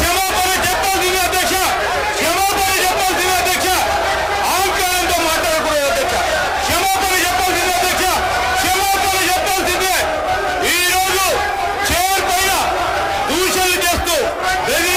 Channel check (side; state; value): both; identical; correlation 1.00